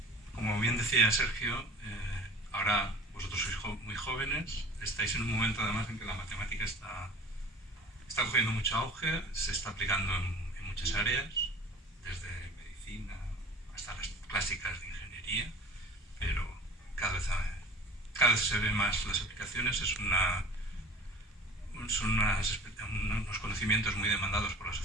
como bien decía Sergio, ahora vosotros sois muy jóvenes, estáis en un momento además en que la matemática está cogiendo mucho auge, se está aplicando en muchas áreas, desde medicina hasta las clásicas de ingeniería, pero cada vez se ven más las aplicaciones, son unos conocimientos muy demandados por la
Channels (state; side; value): normal; both; correlation 0.43